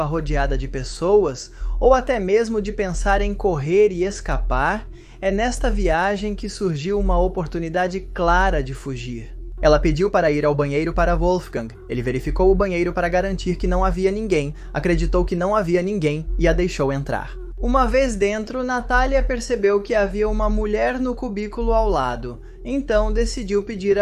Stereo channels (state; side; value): identical; both; correlation 1.00